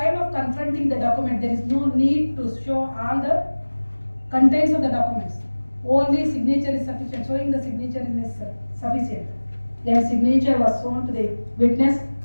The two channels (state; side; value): inverted; both; correlation -1.00